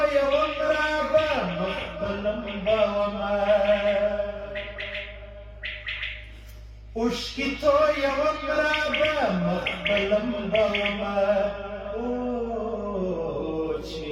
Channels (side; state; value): both; identical; correlation 1.00